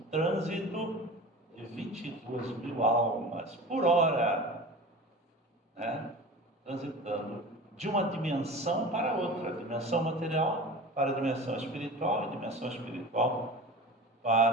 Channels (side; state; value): both; normal; correlation 0.35